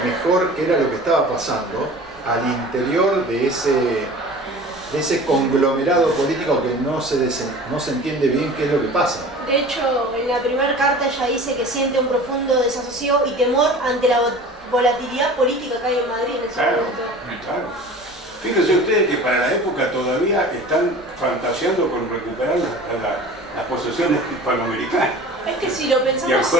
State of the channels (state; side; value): normal; both; correlation 0.40